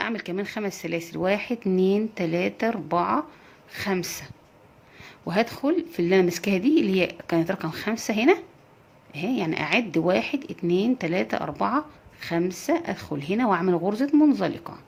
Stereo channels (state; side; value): identical; both; correlation 1.00